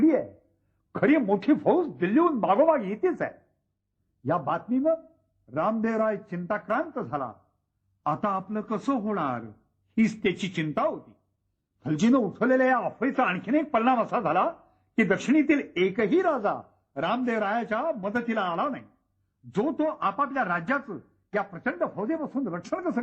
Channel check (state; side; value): identical; both; correlation 1.00